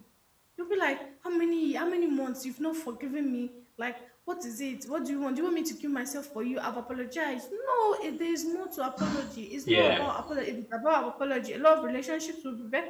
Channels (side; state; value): both; identical; correlation 1.00